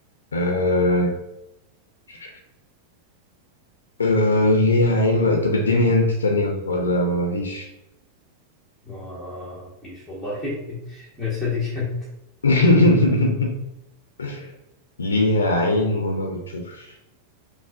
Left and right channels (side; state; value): both; inverted; correlation -0.32